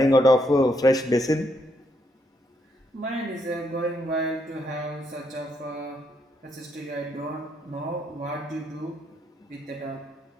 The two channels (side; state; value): both; normal; correlation 0.76